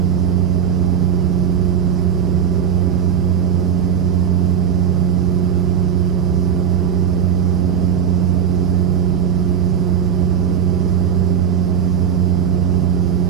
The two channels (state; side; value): quieter; left; 8.0 dB